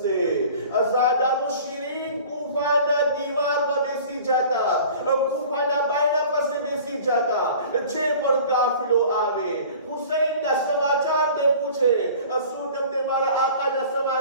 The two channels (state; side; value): inverted; both; correlation -0.44